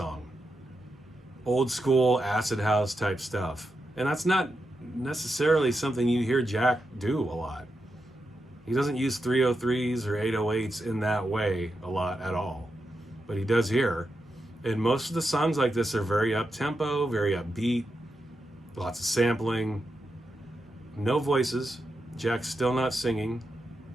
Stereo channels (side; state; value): both; normal; correlation 0.87